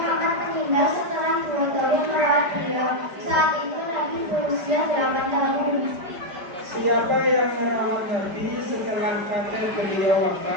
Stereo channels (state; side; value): late; left; 5.1 ms